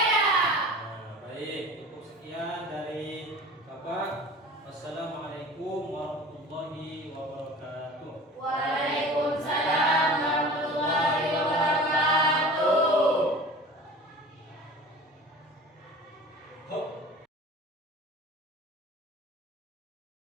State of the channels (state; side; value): normal; both; correlation 0.40